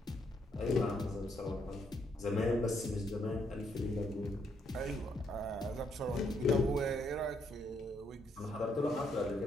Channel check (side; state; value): both; normal; correlation 0.74